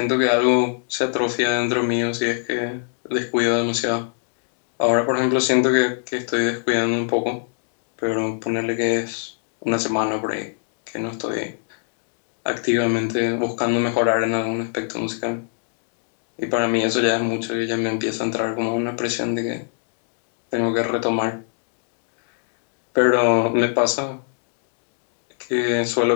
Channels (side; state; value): right; silent; digital silence